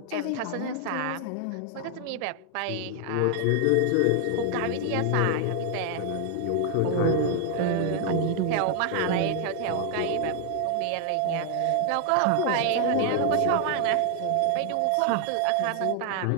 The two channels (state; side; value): different; both; correlation 0.00